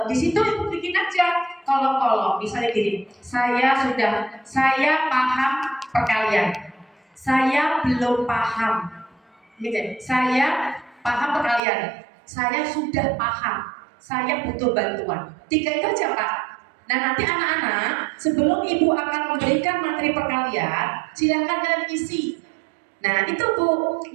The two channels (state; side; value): drops out; left; at 11.6 s